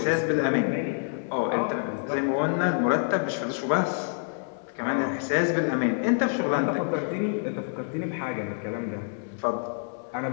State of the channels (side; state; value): right; silent; 59 dB below the other